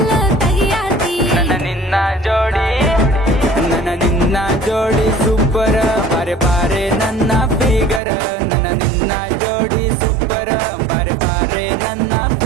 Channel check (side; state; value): left; drops out; at 8.0 s